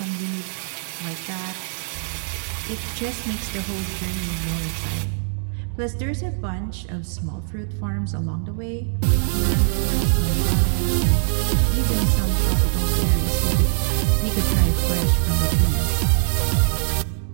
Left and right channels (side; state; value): left; silent; digital silence